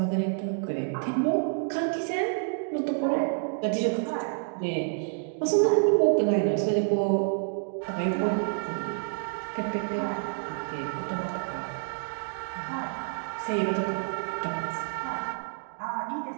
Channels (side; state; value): left; silent; digital silence